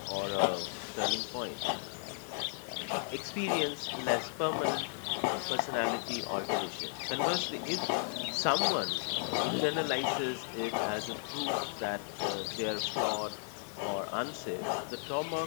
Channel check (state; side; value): silent; right; digital silence